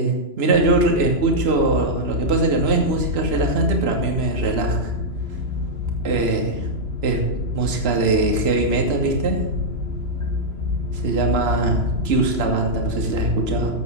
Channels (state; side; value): late; left; 3.0 ms